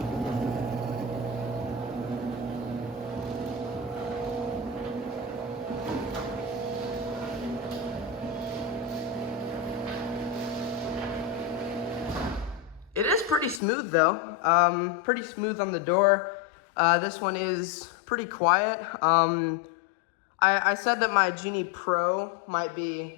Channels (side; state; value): right; drops out; at 13.6 s